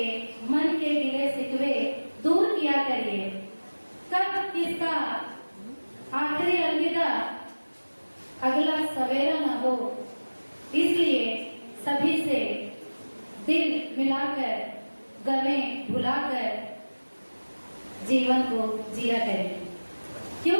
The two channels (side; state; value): both; inverted; correlation -1.00